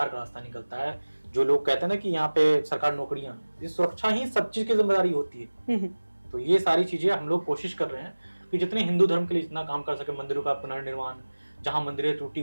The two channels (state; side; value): inverted; both; correlation -1.00